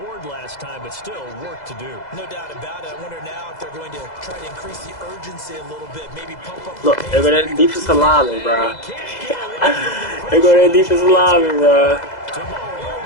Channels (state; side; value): late; right; 2.0 ms